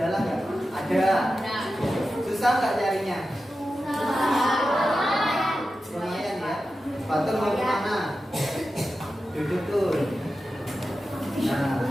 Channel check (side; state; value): both; normal; correlation 0.92